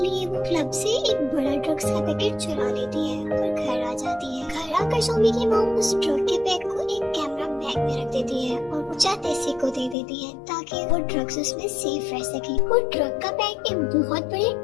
वो क्लब से एक बड़ा ड्रग्स का पैकेट चुरा लेती है और घर आ जाती है। घर आकर सोमी की मॉम उस ड्रग के पैक को एक कैमरा बैग में रख देती है और वो जातेसिक को दे देती है ताकि वो ड्रग्स उसमें सेफ रह सके। वो ड्रग का पैक एक बहुत बड़े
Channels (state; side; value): drops out; right; at 10.0 s